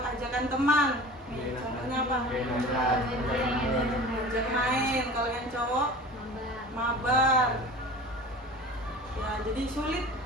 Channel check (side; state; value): both; normal; correlation 0.39